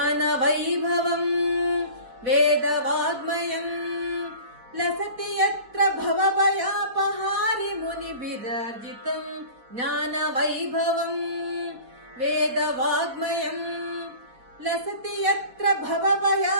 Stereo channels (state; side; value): late; left; 4.3 ms